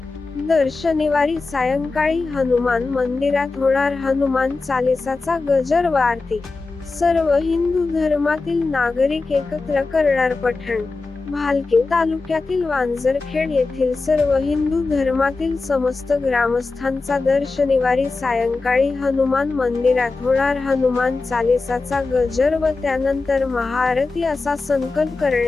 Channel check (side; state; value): right; quieter; 3.8 dB